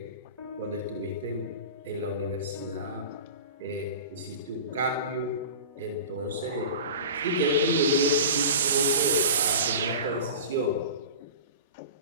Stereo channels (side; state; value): both; inverted; correlation -0.34